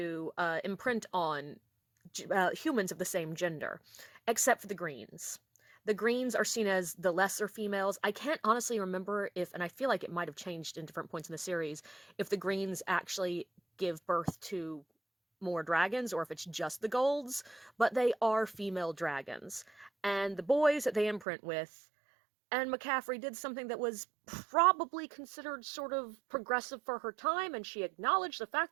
imprint on humans of the same gender, except for the greens. The greens are seen as the lesser females. I can't honestly remember if, and I feel like it might have changed in different points in the series, if the greens actually give birth to more dragons or if it's just the golds, but they are female dragons. And the boys that they imprint with, and McCaffrey did something that was probably considered sort of progressive for her time, and she acknowledged the fact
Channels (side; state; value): left; drops out; at 21.2 s